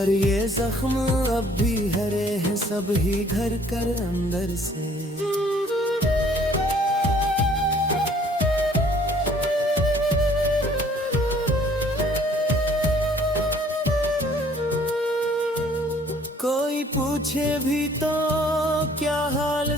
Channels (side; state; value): both; normal; correlation 0.57